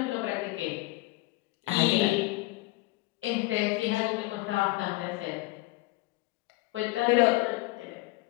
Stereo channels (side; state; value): right; quieter; 20.8 dB